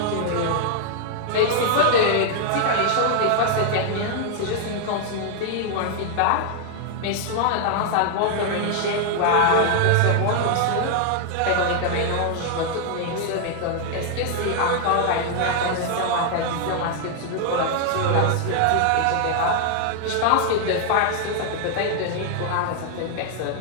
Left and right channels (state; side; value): different; both; correlation 0.00